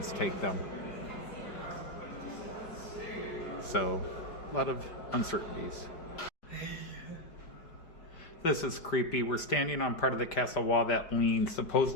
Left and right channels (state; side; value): late; right; 5.0 ms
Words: take them. So, a lot of uncertainties. This is creepy. We're standing on part of the castle wall that leans.